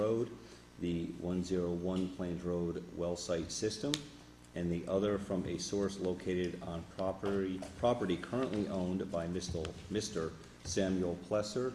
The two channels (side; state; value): both; identical; correlation 1.00